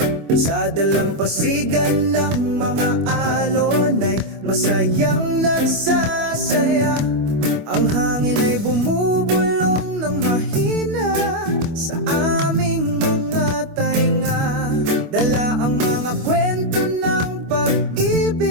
Sa dalampasigan ng mga alon ay masayang nagsasaya. Ang hangin ay bumubulong ng mahina sa aming mga tainga. Dala ang mga kwento ng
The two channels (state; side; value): late; left; 25 ms